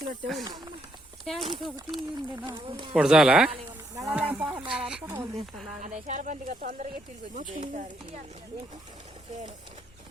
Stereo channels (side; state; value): both; normal; correlation 0.74